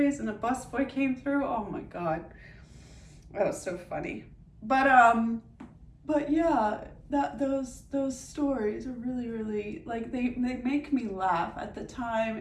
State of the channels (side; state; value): both; identical; correlation 1.00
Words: and a busboy came through. Oh my God. That was so funny. But yeah, those stories are really like they make me laugh. At the